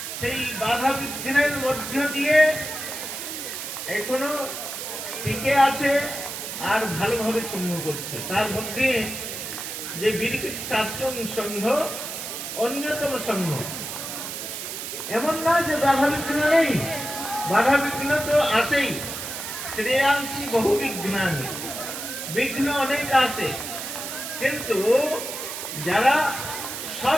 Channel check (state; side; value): noise; right; hiss, 6 dB below the sound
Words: সেই বাধা বিঘ্নের মধ্য দিয়ে এখনো টিকে আছে আর ভালোভাবে সংঘ করছে। তার মধ্যে যে বিরকুটি সারস্বত সংঘ অন্যতম সংঘ। এমন না যে বাধা বিঘ্ন নেই, বাধা বিঘ্ন তো আসেই। শ্রেয়াংশী বহু বিঘ্নানি, বিঘ্ন অনেক আছে, কিন্তু যারা